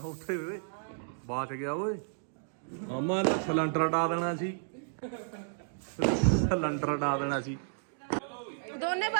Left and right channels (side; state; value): left; silent; digital silence